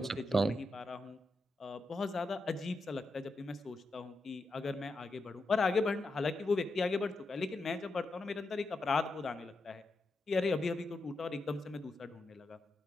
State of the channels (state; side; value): normal; both; correlation 0.87